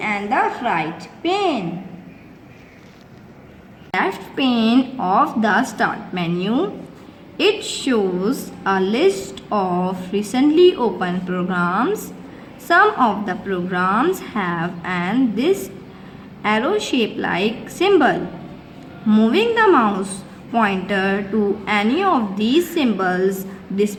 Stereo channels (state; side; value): identical; both; correlation 1.00